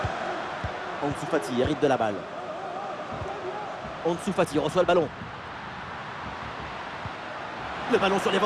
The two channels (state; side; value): identical; both; correlation 1.00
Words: Ansu Fati hérite de la balle. Ansu Fati reçoit le ballon. Le ballon sur